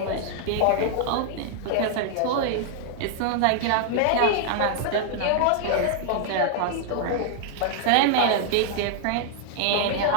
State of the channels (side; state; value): both; different; correlation -0.01